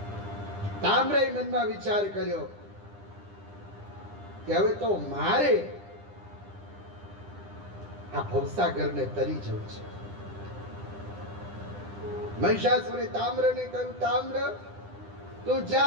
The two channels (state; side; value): late; left; 10 ms